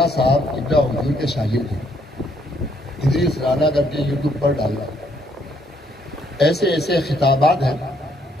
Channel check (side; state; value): both; normal; correlation 0.70